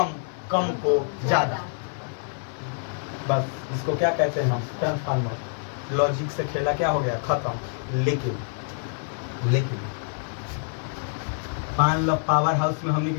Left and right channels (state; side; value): silent; right; digital silence